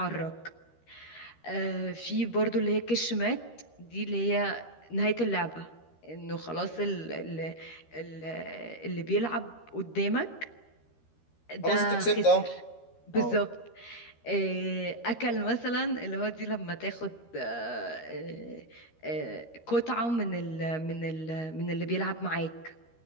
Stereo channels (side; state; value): right; late; 13 ms